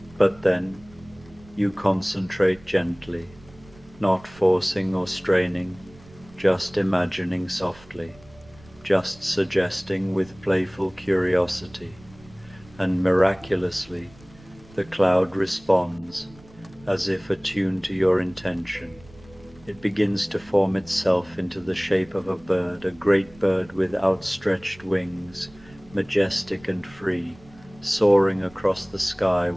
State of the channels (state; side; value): noise; right; rumble, 24 dB below the sound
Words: But then, you concentrate gently, not forcing or straining, just imagining softly, just suggesting with playful curiosity, and miraculously, the cloud responds, as if attuned to your intention. It begins to form itself into the shape of a bird, a great bird with outstretched wings, majestic and free, soaring across the sky